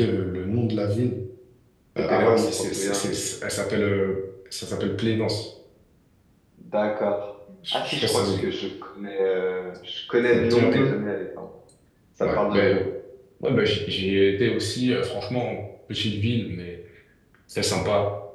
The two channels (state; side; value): identical; both; correlation 1.00